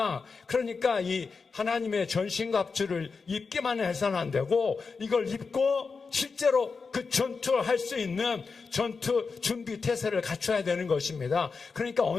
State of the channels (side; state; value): right; quieter; 4.8 dB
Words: 그러니까 이 하나님의 전신갑주를 입기만 해서는 안 되고 이걸 입고 실제로 그 전투를 할 수 있는 전투 준비 태세를 갖춰야 되는 것입니다. 그러니까